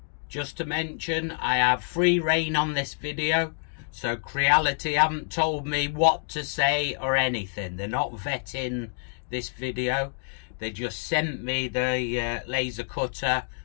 Just to mention, I have free reign on this video, so Creality haven't told me what to say or anything. They're not vetting this video. They just sent me the laser cutter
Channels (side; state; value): right; silent; 60 dB below the other